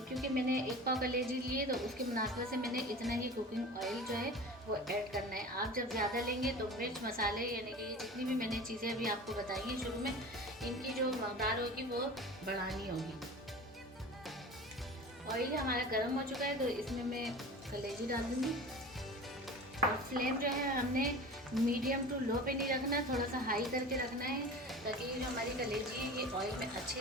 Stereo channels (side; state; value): both; normal; correlation 0.36